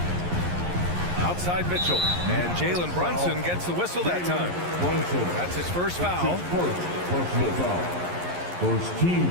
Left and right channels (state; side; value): late; left; 11 ms